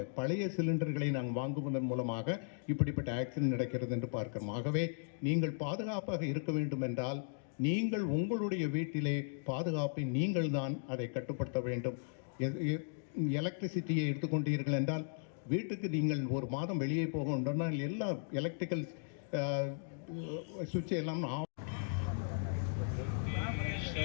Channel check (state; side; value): silent; right; digital silence